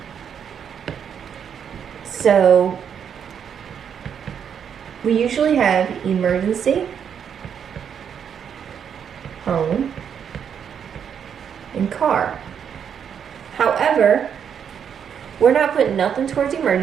So we usually have emergency, home, and car. However, we're not putting nothing towards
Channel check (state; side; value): quieter; left; 7.9 dB